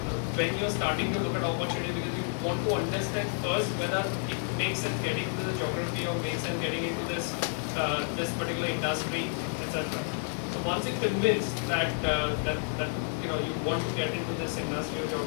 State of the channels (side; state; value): right; silent; digital silence